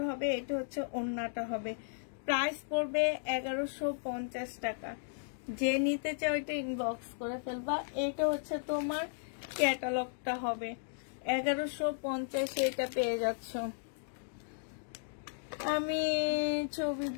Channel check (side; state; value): right; silent; digital silence